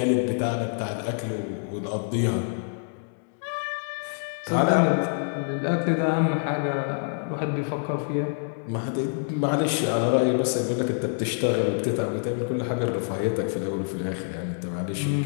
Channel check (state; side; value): silent; right; digital silence